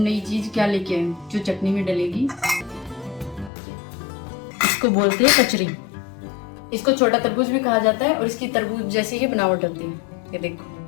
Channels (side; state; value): right; drops out; at 3.5 s